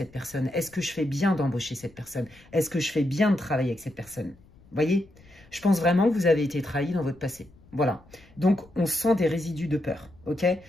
personne? Est-ce que je fais bien d'embaucher cette personne? Est-ce que je fais bien de travailler avec cette personne? Vous voyez? Je pense vraiment que vous avez été trahi dans votre passé. Voilà. Donc, on sent des résidus de peur, ok?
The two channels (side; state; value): left; noise; rumble, 26 dB below the sound